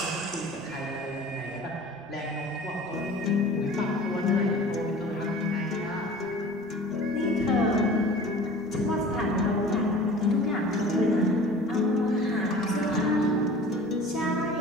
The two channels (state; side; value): noise; right; rumble, 27 dB below the sound